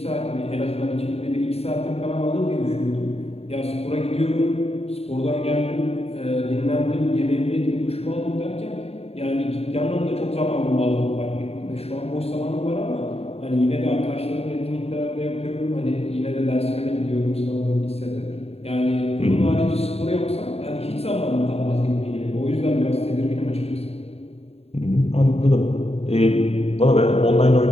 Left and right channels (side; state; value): right; late; 0.29 ms